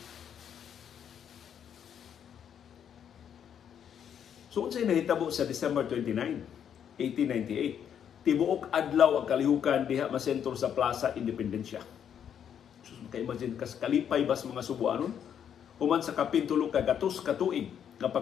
So unsay nahitabo sa December 29, 1898, tibuok adlaw ang kalihukan diha masentro sa Plaza Independencia. So maka-imagine kas kalipay bas mga Subuanon human sa kapintulo ka gatos ka tuig nga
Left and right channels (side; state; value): right; quieter; 8.7 dB